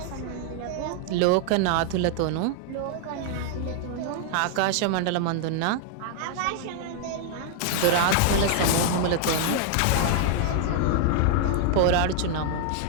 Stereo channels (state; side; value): different; both; correlation 0.00